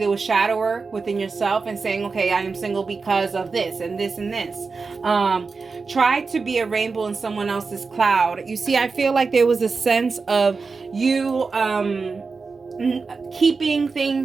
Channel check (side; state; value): left; quieter; 4.5 dB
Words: was shadow work within yourself and saying, okay, I am single because of this and this and this. Try to be a rainbow in someone else's cloud. You see, I feel like there was a sense of you keeping